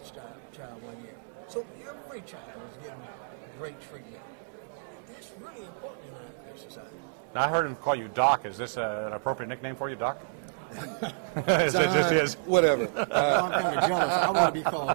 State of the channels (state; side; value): silent; left; 58 dB below the other